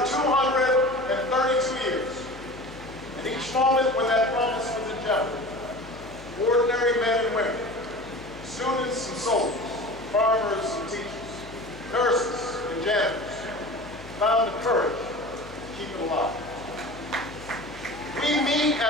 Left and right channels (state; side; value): noise; left; hum, 18 dB below the sound